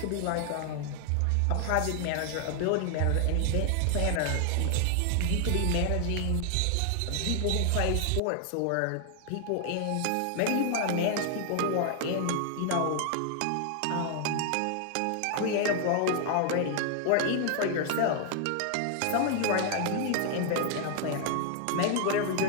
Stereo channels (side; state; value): both; different; correlation 0.00